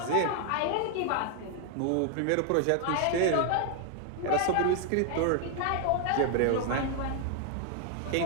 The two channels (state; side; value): different; both; correlation 0.00